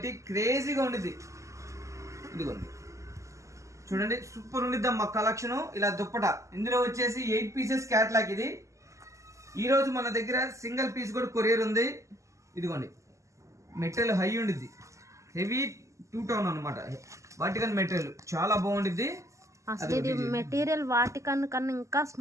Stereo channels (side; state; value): left; late; 0.15 ms